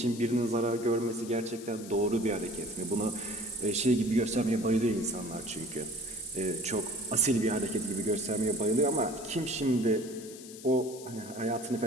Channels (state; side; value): noise; left; hiss, 16 dB below the sound